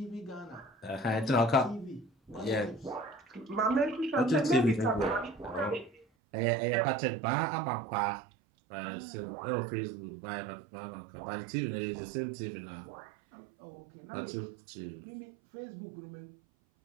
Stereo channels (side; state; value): left; drops out; at 6.1 s